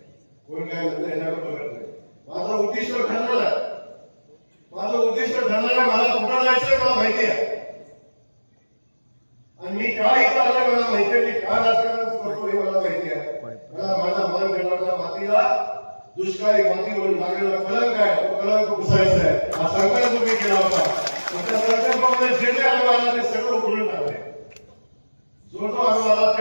कोण काय म्हणतं याच्याकडे बघत नाही. माझं उद्दिष्ट ठरलेलं आहे, मला कुठं जायचंय मला माहिती आहे, आणि मी का इथं आलोय मला माहिती आहे, मी का राजकारण करतो हे मला माहिती आहे. मला माझ्या मानखेटाच्या मातीला दुष्काळी माती म्हणून लागलेला कलंक आहे, तो कलंक पुसायचा आहे. हा संकल्प तुम्ही केला होता, त्या संकल्पामध्ये जे जे अनुभव आला ते सगळं उघडून टाकले, जो अनुभव आला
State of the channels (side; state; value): both; inverted; correlation -1.00